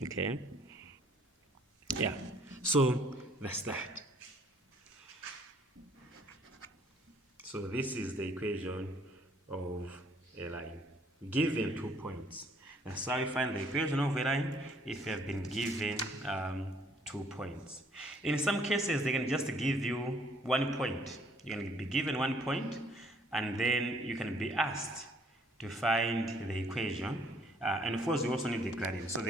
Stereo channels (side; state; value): both; normal; correlation 0.62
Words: Okay. Yeah. So that's that. So this is the equation of a line given 2 points. That's how you find the equation of a line if you have been given 2 points. In some cases, they can just give you 1 point. You can be given 1 point, and then you can be asked to find the equation. And of course, you also need the gradient. So